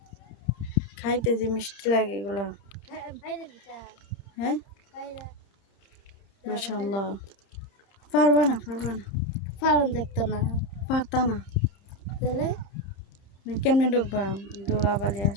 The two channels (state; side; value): late; right; 30 ms